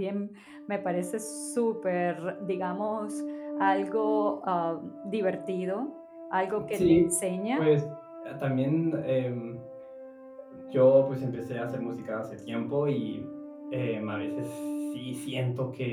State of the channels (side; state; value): both; identical; correlation 1.00